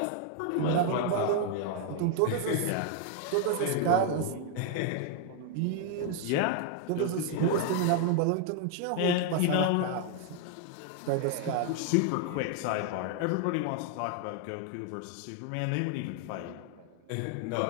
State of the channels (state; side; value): different; both; correlation 0.00